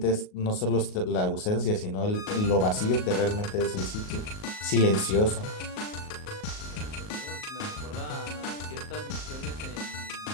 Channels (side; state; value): right; late; 38 ms